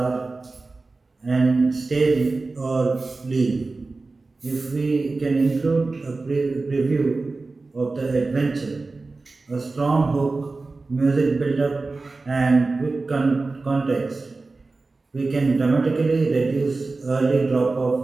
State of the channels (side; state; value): left; quieter; 3.6 dB